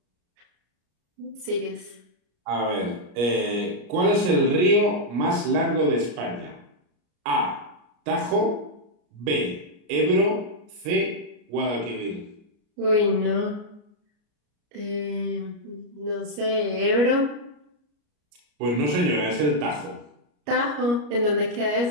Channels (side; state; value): left; late; 34 ms